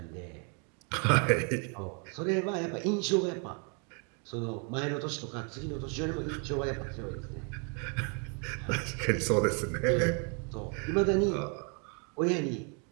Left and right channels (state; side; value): quieter; left; 37.5 dB